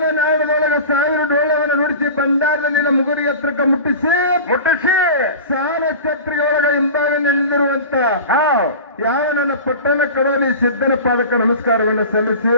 1000 ಡೋಳವನ್ನು ನುಡಿಸಿ ಭಂಡಾರದಲ್ಲಿನ ಮುಗುರಿ ಎತ್ತರಕ್ಕೆ ಮುಟ್ಟಿಸಿ ಸಾಲ ಛತ್ರಿಗೆ ಒಳಗ ಹಿಂಭಾಗ ನಿಲ್ಲಿರುವಂತ ಯಾವ ನನ್ನ ಪಟ್ಟಣ ಕಡೋಲಿ ಸಿದ್ಧನ ಪಾದಕ್ಕೆ ನಮಸ್ಕಾರವನ್ನು ಸಲ್ಲಿಸಿ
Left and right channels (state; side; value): inverted; both; correlation -0.34